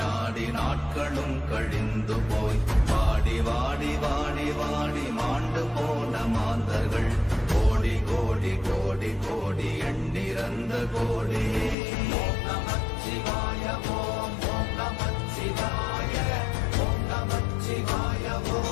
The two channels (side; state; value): right; drops out; at 11.8 s